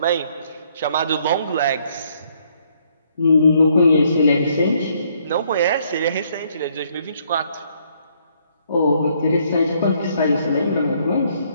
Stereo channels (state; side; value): inverted; both; correlation -0.68